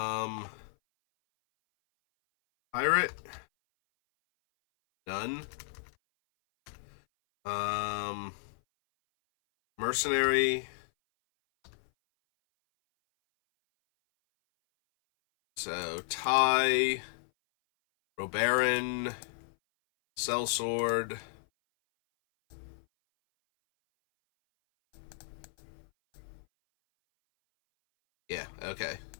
Pirate. Done. Mercenary. So, Ty, Robaron, Sellsword. Yeah, okay.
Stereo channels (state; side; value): silent; right; 56 dB below the other